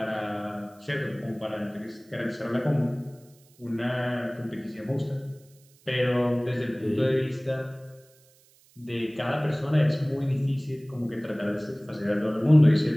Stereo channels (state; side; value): noise; right; hiss, 30 dB below the sound